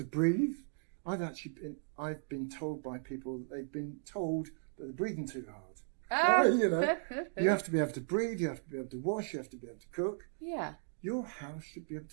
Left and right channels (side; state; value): left; silent; digital silence